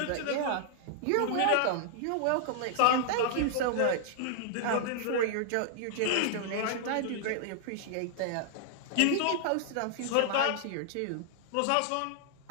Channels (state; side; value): different; both; correlation -0.01